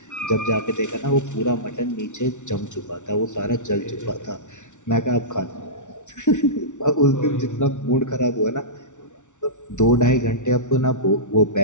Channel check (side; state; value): right; late; 0.86 ms